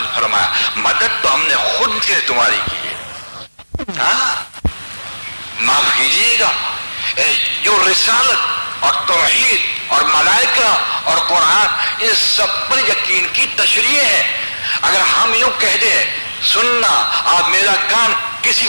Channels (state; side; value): inverted; both; correlation -1.00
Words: فرمایا، مدد تو ہم نے خود سے تمہاری کی ہے۔ ہاں، معاف کیجیے گا، جو رسالت اور توحید اور ملائکہ اور قرآن، ان سب پر یقین کی تشریح ہے۔ اگر ہم یوں کہہ دیں سننا، آپ میرا کان کسی